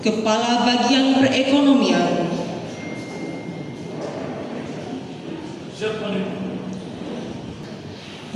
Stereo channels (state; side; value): identical; both; correlation 1.00